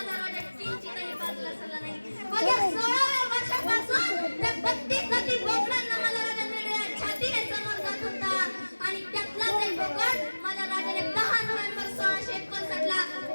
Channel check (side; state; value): both; inverted; correlation -1.00